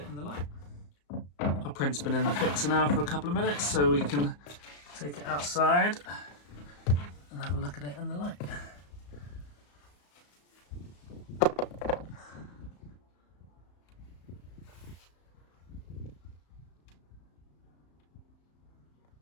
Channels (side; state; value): right; late; 34 ms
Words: in the light. Our print's been in the fixer now for a couple of minutes, so we can take it outside and have a look at it in the light.